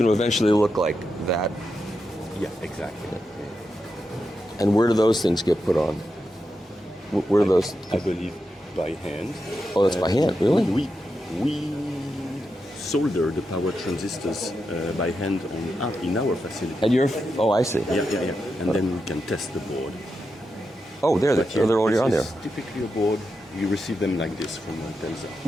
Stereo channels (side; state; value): both; normal; correlation 0.87